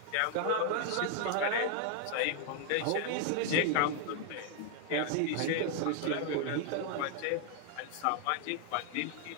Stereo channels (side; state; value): both; different; correlation 0.00